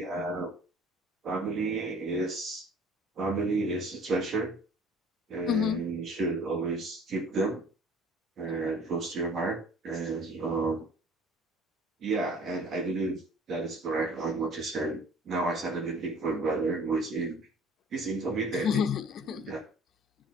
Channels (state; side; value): normal; both; correlation 0.49